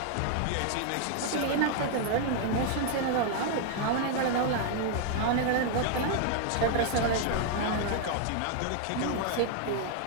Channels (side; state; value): both; different; correlation 0.00